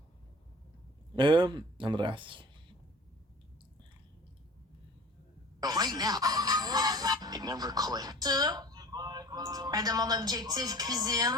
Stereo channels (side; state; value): both; normal; correlation 0.43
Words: the Andreas. Right now. It never clicked. De mon objectif